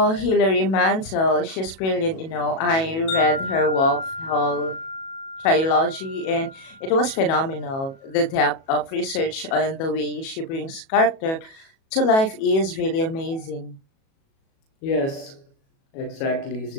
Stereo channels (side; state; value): right; late; 37 ms